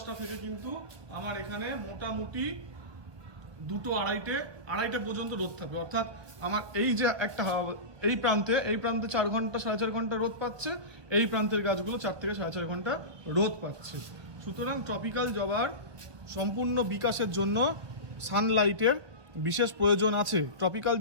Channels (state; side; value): late; left; 1.1 ms